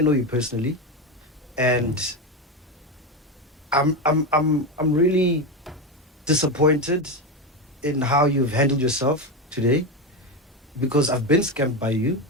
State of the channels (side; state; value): both; normal; correlation 0.14